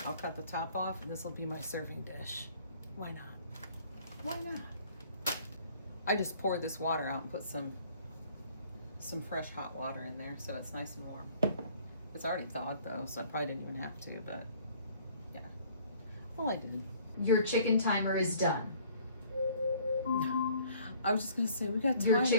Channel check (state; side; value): inverted; both; correlation -0.57